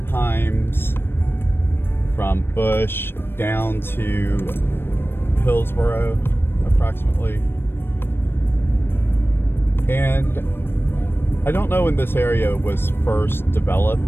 Himes, from Bush down to Hillsborough approximately. And I don't know when this area was first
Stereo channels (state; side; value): late; right; 0.10 ms